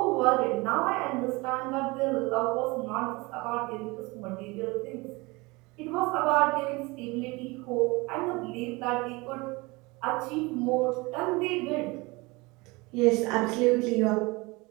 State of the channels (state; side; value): quieter; left; 24.4 dB